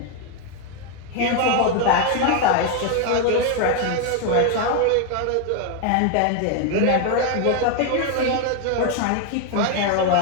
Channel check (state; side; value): different; both; correlation 0.01